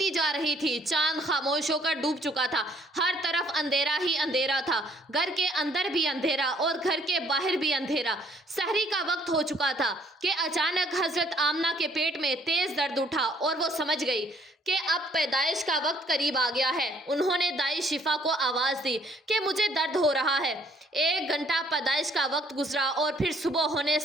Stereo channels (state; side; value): normal; both; correlation 0.62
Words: جا رہی تھی۔ چاند خاموش ہو کر ڈوب چکا تھا۔ ہر طرف اندھیرا ہی اندھیرا تھا۔ گھر کے اندر بھی اندھیرا اور گھر کے باہر بھی اندھیرا۔ سحری کا وقت ہو چکا تھا کہ اچانک حضرت آمنہ کے پیٹ میں تیز درد اٹھا اور وہ سمجھ گئی کہ اب پیدائش کا وقت قریب آ گیا ہے۔ انہوں نے دائی شفا کو آواز دی کہ مجھے درد ہو رہا ہے۔ 1 گھنٹہ پیدائش کا وقت گزرا اور پھر صبح ہونے